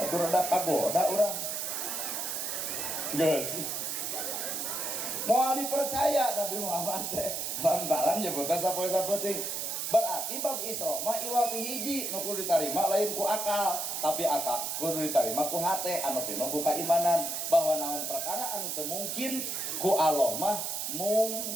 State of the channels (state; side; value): noise; right; hiss, 3 dB below the sound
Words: atuh rada kagoda urang. Geus. Moal dipercaya Nabi Muhammad teh lantaran nyebutna sapoe sapeuting. Berarti bab Isra mah iwal ti hiji nu kudu ditarima lain ku akal, tapi akal kudu ditarima ku hate anu pinu ku keimanan bahwa naon perkara anu teu mungkin ku Allah mah